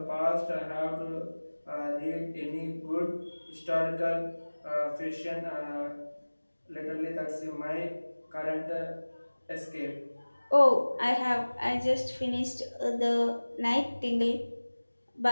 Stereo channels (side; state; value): both; inverted; correlation -1.00